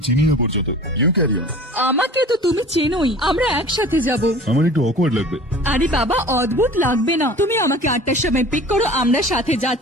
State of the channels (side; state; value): both; normal; correlation 0.43